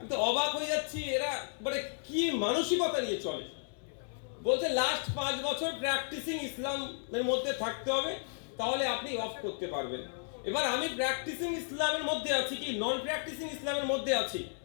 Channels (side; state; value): right; silent; digital silence